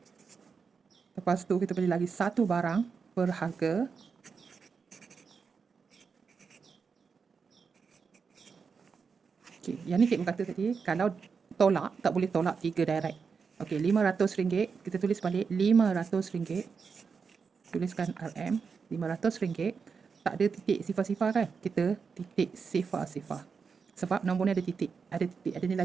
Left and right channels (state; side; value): quieter; left; 5.6 dB